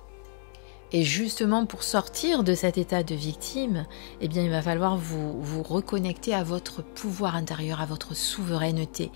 Et justement pour sortir de cet état de victime, eh bien il va falloir vous reconnecter à votre pouvoir intérieur, à votre souveraineté.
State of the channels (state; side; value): silent; right; digital silence